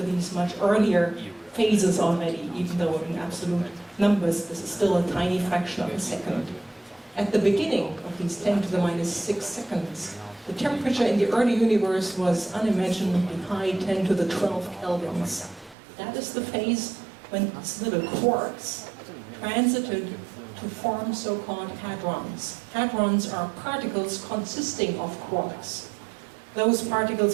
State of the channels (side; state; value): left; drops out; at 15.8 s